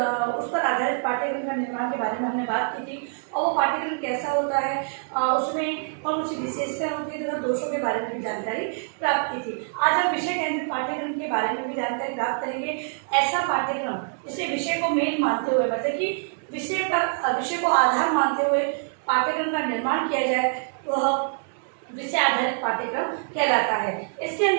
पर आधारित पाठ्यक्रम का निर्माण के बारे में हमने बात की थी। और वो पाठ्यक्रम कैसा होता है, उसमें कौन सी विशेषताएं होती है तथा दोषों के बारे में भी जानकारी प्राप्त की थी। आज हम विषय केंद्रित पाठ्यक्रम के बारे में भी जानकारी प्राप्त करेंगे। ऐसा पाठ्यक्रम जिससे विषय को मेन मानते हुए, मतलब कि विषय को आधार मानते हुए पाठ्यक्रम का निर्माण किया जाए, वह विषय आधारित पाठ्यक्रम कहलाता है। इसके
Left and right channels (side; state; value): left; silent; 61 dB below the other